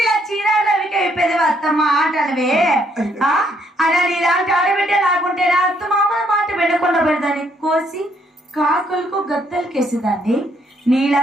ఇలా చీరలకి అయిపోయేది అత్తమ్మ ఆటలవే. అలా నీలాంటి ఆడబిడ్డ లాగుంటే నా అత్తమామ మాట వినకుండా పెడదాన్ని కోసి కాకులకు గత్తలకేసేదాన్ని.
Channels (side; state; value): both; normal; correlation 0.70